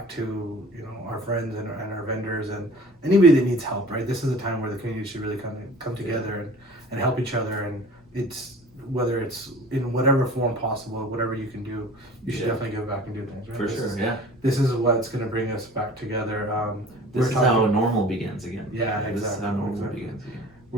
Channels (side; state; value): both; normal; correlation 0.44